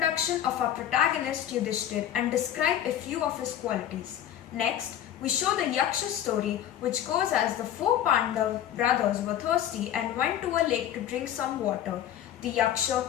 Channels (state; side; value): quieter; right; 11.0 dB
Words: of our protagonist Yudhishthir and describe a few of his qualities. Next, we show the Yaksha story, which goes as the 4 Pandav brothers were thirsty and went to a lake to drink some water. The